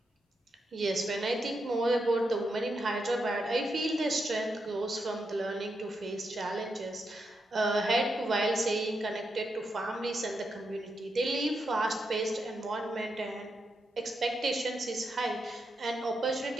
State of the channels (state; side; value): normal; both; correlation 0.84